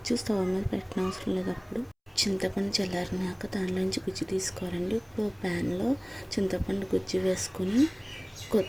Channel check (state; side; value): identical; both; correlation 1.00